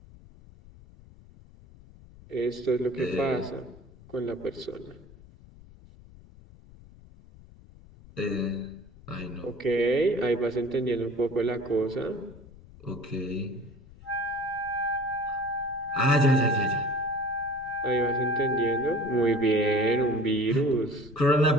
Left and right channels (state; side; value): noise; left; rumble, 22 dB below the sound